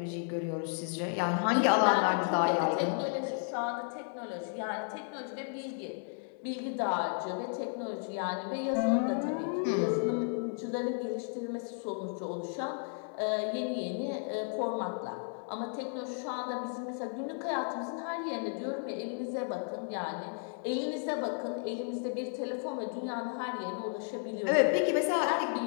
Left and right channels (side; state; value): right; silent; 55 dB below the other